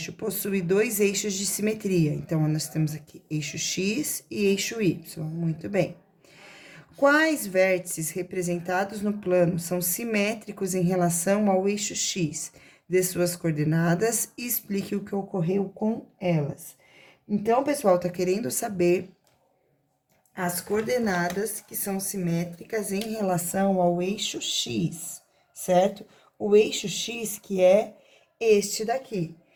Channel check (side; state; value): both; identical; correlation 1.00